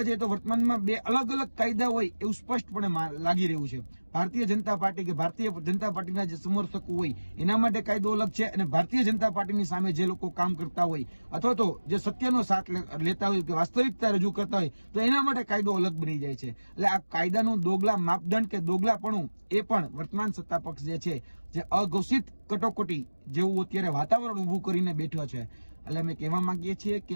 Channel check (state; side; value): inverted; both; correlation -1.00